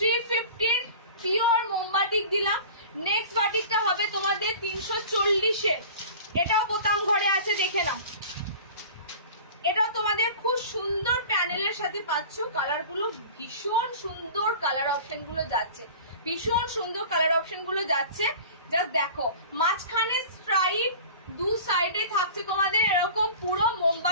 পিওর মোমবাটিক দিলাম। নেক্সট বাটিকটা হবে তোমাদের 340-এর, এটাও বোতাম ঘরে আছে, দেখে নাও। এটাও তোমাদের খুব সুন্দর প্যানেলের সাথে পাচ্ছ। কালার গুলো ভীষণ সুন্দর, কালার অপশন গুলো যাচ্ছে, ভীষণ সুন্দর কালার অপশন গুলো যাচ্ছে। জাস্ট দেখো, মাঝখানে স্ট্রাইপ, দু সাইডে থাকছে তোমাদের এরকম পুরো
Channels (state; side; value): inverted; both; correlation -0.40